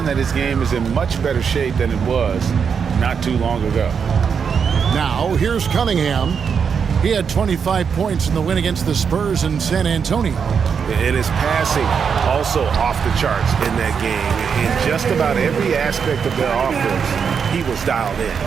that his game is in much better shape than it was not too long ago. Now, here's Cunningham. He had 25 points in the win against the Spurs in San Antonio. And his passing also off the charts in that game. In just about every aspect of their offense, he was dialed in.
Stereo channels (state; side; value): quieter; left; 6.5 dB